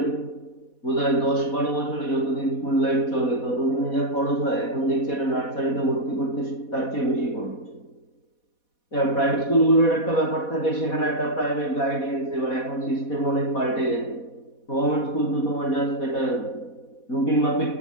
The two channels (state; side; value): late; right; 4.1 ms